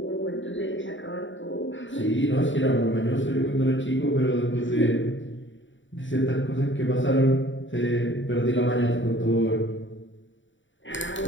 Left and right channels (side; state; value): right; late; 0.55 ms